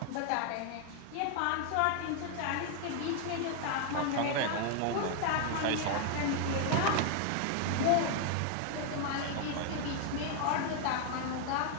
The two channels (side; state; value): both; different; correlation 0.00